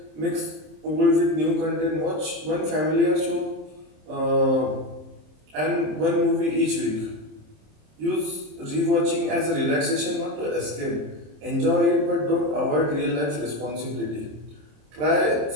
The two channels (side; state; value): left; late; 26 ms